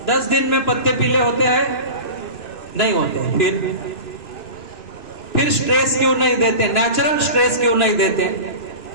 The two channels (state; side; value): late; right; 2.6 ms